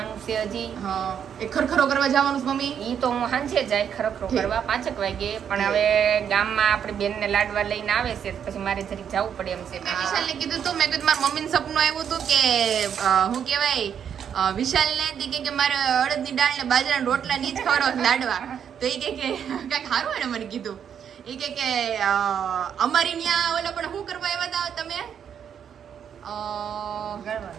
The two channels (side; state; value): left; quieter; 8.3 dB